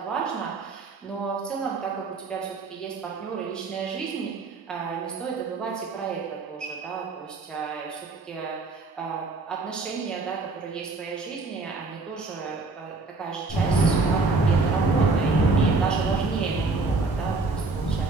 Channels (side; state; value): left; quieter; 3.8 dB